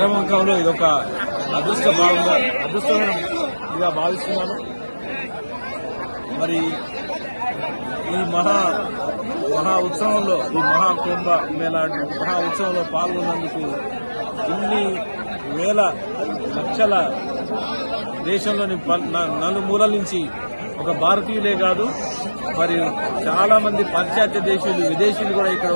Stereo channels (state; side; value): inverted; both; correlation -1.00